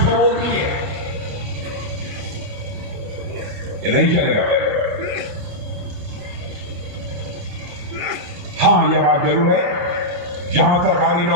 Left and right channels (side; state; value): left; late; 28 ms